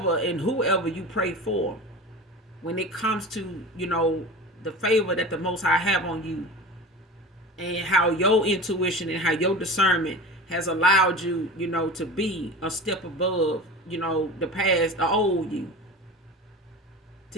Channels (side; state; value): both; normal; correlation 0.33